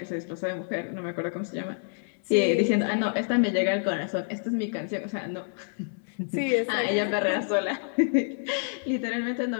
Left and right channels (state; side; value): silent; right; digital silence